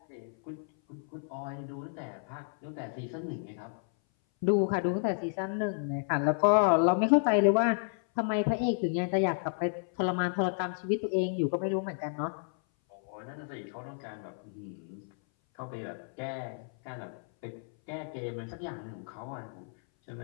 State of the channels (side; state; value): right; silent; 57 dB below the other